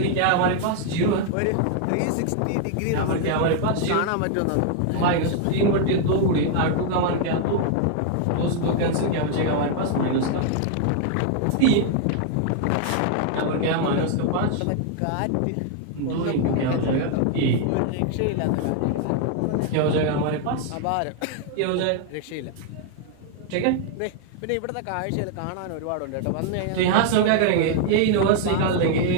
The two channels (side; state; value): both; different; correlation 0.00